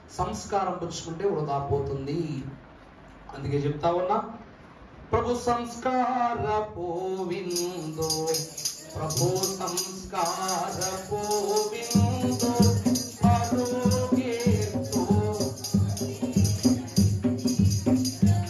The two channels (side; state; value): both; identical; correlation 1.00